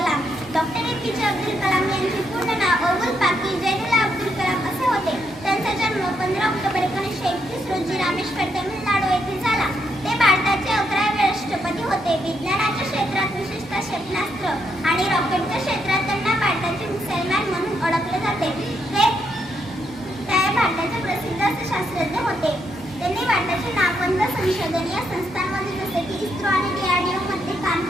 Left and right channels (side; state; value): both; normal; correlation 0.78